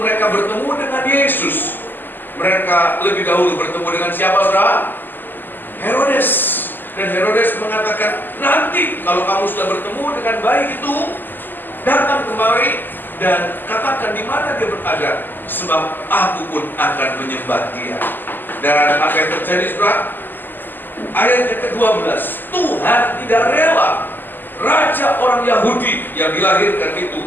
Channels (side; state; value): right; late; 0.090 ms